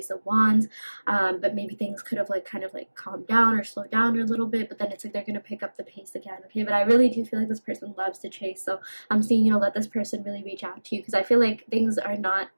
of Wands, but maybe things could have like kind of like calmed down or slowed down a little bit, but then it's like they're gonna pick up the pace again. Okay, but I really do feel like this person loves to chase, so I'm seeing, let this person really reach out to you, because I feel like things are not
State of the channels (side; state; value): both; inverted; correlation -1.00